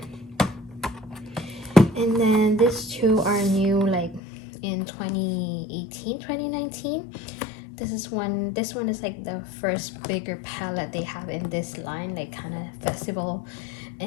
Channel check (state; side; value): drops out; right; at 4.2 s